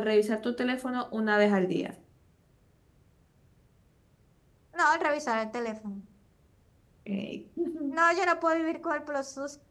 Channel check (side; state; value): both; identical; correlation 1.00